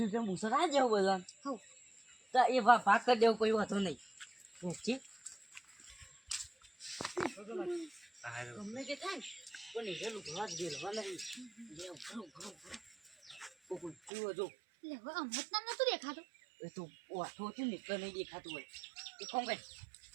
મુસર આ જાવ બધા તો એ ભાગ કરી દેવો કોઈ વાંધો નહીં ઠીક ગમે તે થાય પણ હીરે લુકડા જ દેવા નહીં જો દેખાતો એ તો વાઠો છે ને એટલે નહીં દેખાતું હોય એ કામ કર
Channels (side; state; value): left; drops out; at 14.1 s